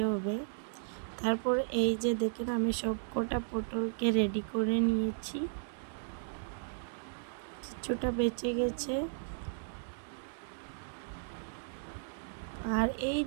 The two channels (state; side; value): silent; left; digital silence